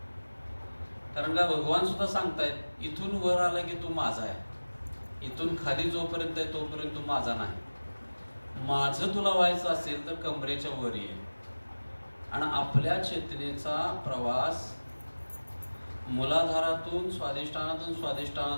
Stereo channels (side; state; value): both; inverted; correlation -1.00